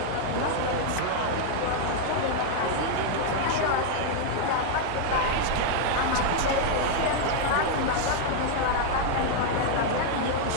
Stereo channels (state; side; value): different; both; correlation 0.00